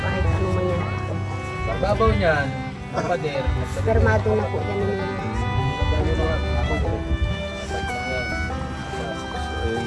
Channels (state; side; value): identical; both; correlation 1.00